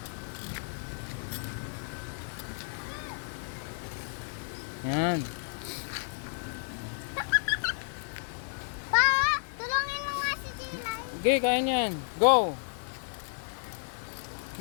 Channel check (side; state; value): right; silent; 57 dB below the other